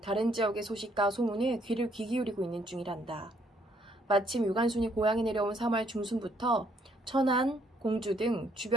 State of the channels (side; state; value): both; normal; correlation 0.68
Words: 다른 지역의 소식과 소문에 귀를 귀 기울이고 있는 중이란다. 마침 유관순이 고향에 내려온 3월 중순부터 천안, 공주 등